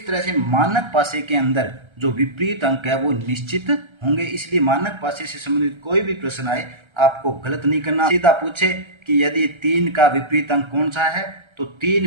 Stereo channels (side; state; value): left; late; 1.3 ms